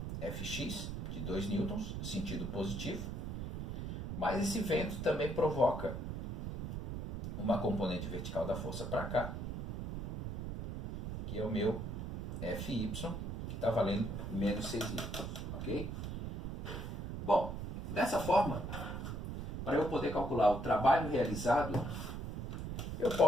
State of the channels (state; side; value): noise; right; rumble, 5 dB below the sound